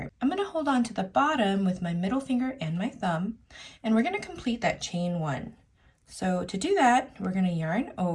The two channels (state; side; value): identical; both; correlation 1.00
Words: I'm going to hold on to the bottom with my middle finger and my thumb, and we're going to complete that chain one. So to do that, we're going to yarn